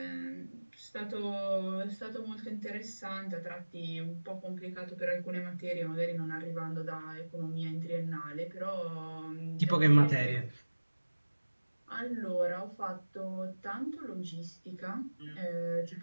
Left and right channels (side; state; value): both; inverted; correlation -1.00